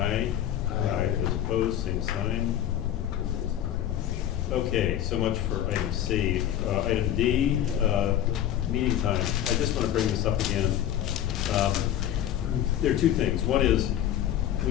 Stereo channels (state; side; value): quieter; right; 11.3 dB